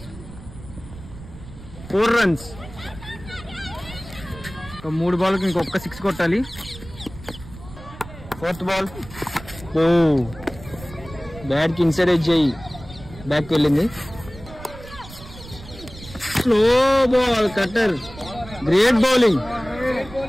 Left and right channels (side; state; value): right; noise; rumble, 16 dB below the sound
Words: 4 runs. 3 బాల్కి ఇంకొక 6 కొట్టాలి. ఫోర్త్ బాల్ ఓ బ్యాట్ కి ఇన్సైడ్ ఎడ్జ్ అయ్యి బ్యాక్ వెళ్ళింది. Slow ball cutter. Great bowling.